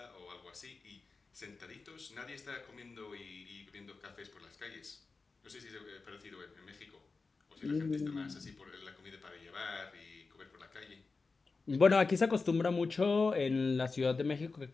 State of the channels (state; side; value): quieter; right; 4.1 dB